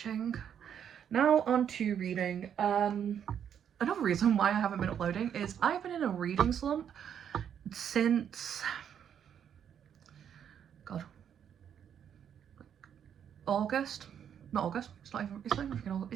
Now on to reading. Another reason why I haven't been uploading is I've been in a reading slump since August. Not August. It's not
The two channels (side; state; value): left; quieter; 8.7 dB